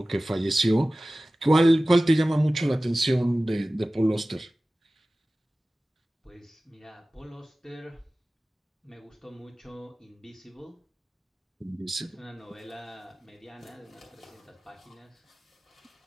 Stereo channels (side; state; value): both; normal; correlation 0.97